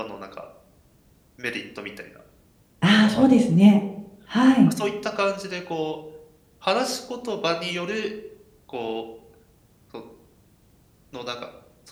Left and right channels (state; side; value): identical; both; correlation 1.00